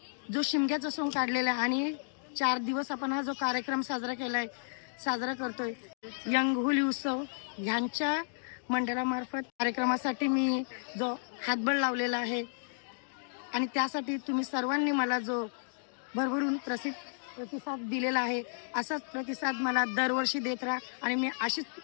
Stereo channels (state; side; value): silent; right; digital silence